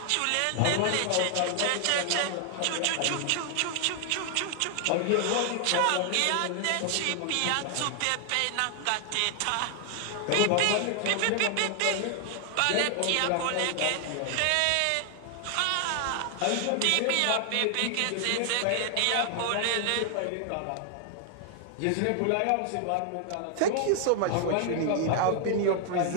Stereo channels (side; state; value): both; different; correlation 0.00